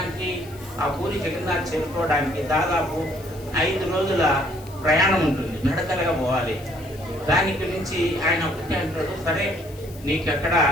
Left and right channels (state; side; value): noise; left; hiss, 22 dB below the sound